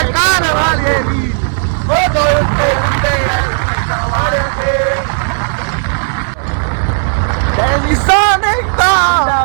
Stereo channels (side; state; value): left; silent; digital silence